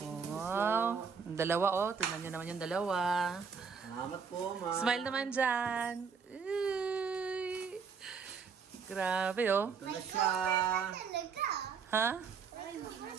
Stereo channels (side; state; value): left; quieter; 5.9 dB